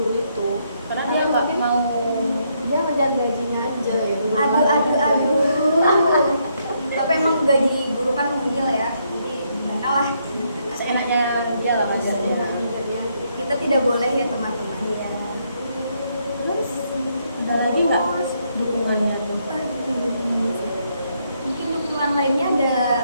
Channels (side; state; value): both; inverted; correlation -0.75